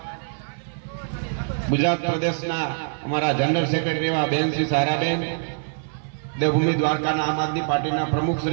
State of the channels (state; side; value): silent; left; 56 dB below the other